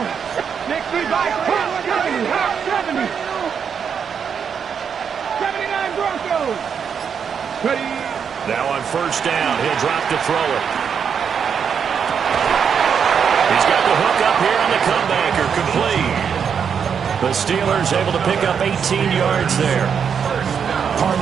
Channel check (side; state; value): left; quieter; 7.1 dB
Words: Next three bikes. 70. 70. 79 Broncos. Ready. Now on first down, he'll drop to throw it. He's got the hook up here on the comebacker, complete. The Steelers able to pick up 18 yards there.